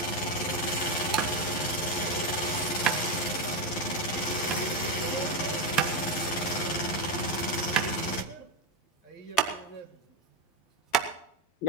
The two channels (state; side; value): late; right; 11 ms